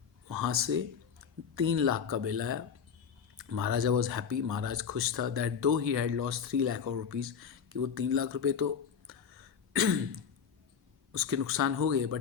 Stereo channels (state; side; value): quieter; right; 7.0 dB